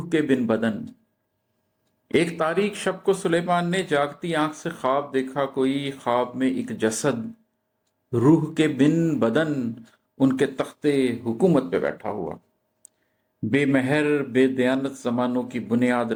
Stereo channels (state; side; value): identical; both; correlation 1.00